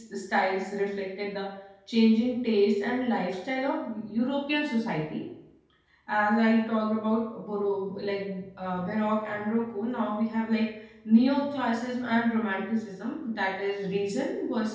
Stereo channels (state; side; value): identical; both; correlation 1.00